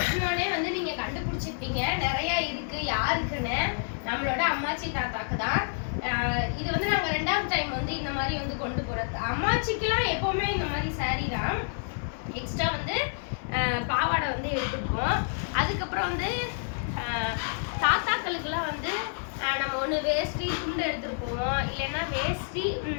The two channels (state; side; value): silent; right; 59 dB below the other